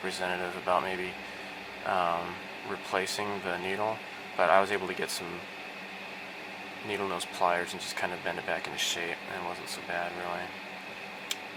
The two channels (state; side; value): identical; both; correlation 1.00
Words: about maybe replacing the needle, but I was able to get some needle nose pliers and just kind of bend it back into shape, and it wasn't so bad, really.